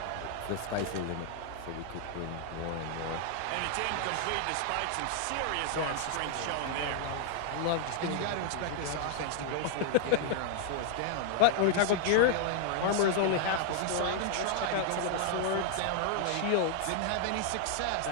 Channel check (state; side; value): different; both; correlation 0.00